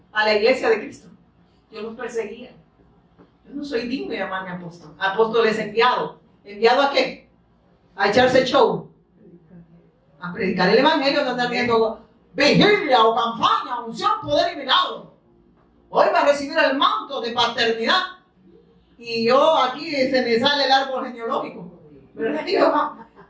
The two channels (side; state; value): both; identical; correlation 1.00